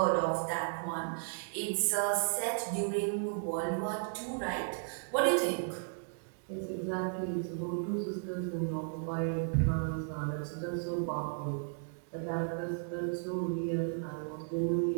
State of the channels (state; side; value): silent; left; digital silence